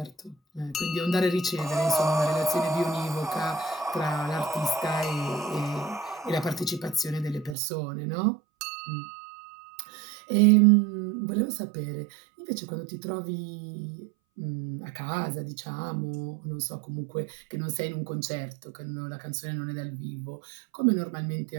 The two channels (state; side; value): drops out; left; at 7.6 s